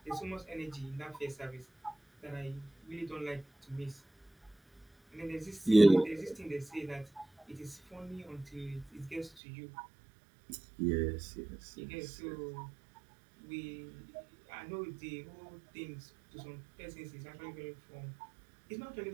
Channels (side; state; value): left; drops out; at 9.3 s